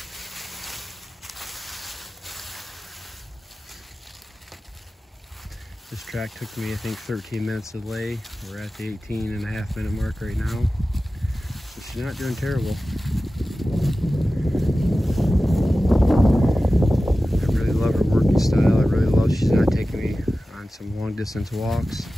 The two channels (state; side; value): normal; both; correlation 0.95